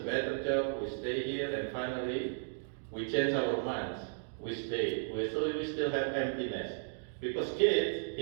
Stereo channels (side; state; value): left; silent; digital silence